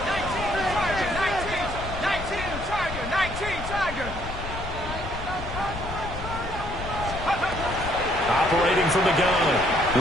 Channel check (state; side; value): noise; left; rumble, 8 dB below the sound